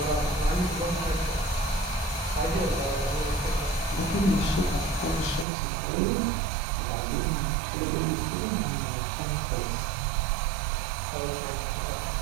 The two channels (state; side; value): drops out; left; at 5.5 s